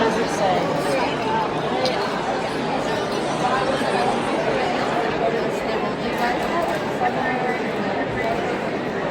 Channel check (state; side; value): identical; both; correlation 1.00